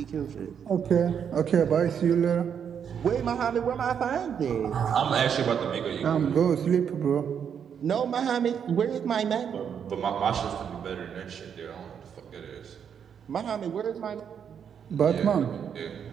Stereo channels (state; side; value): quieter; left; 7.8 dB